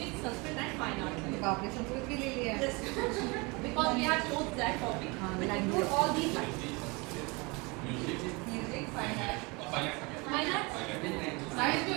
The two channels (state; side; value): quieter; left; 27.5 dB